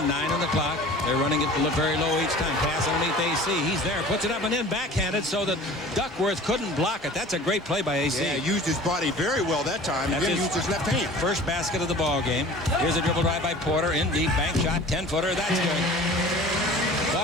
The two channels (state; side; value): normal; both; correlation 0.43